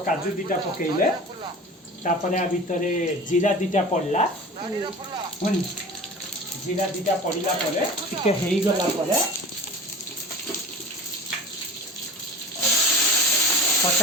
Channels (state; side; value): normal; both; correlation 0.37